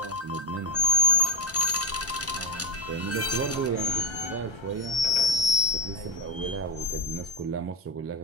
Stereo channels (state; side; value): normal; both; correlation 0.13